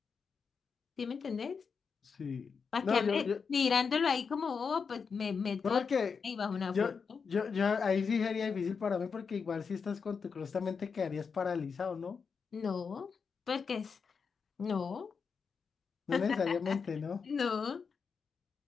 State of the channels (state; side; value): quieter; right; 5.7 dB